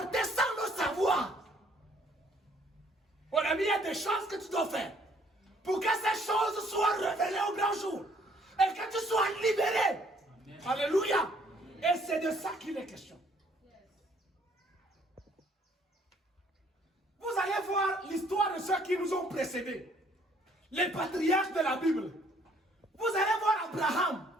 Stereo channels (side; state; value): both; normal; correlation 0.62